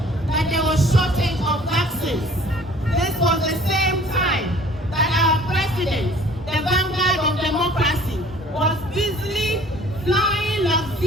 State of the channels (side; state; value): both; normal; correlation 0.52